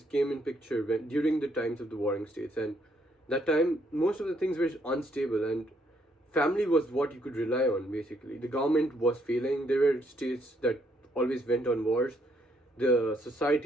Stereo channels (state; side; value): normal; both; correlation 0.72